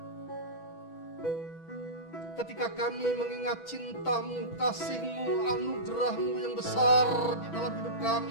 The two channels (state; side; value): late; right; 6.1 ms